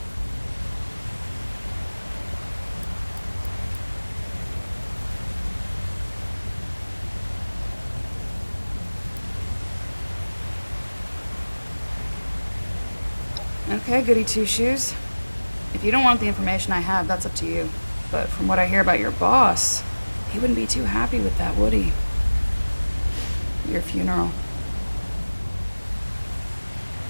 Okay, goody two-shoes. If you don't want the information I have, that's up to you. But from what I hear about your boss, he wouldn't be too happy with that, would he? Your funeral.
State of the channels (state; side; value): inverted; both; correlation -1.00